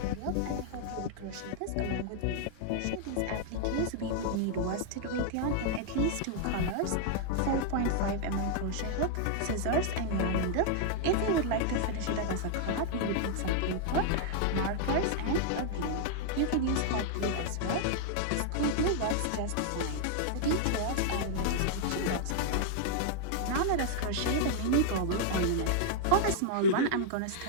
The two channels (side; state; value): both; different; correlation -0.01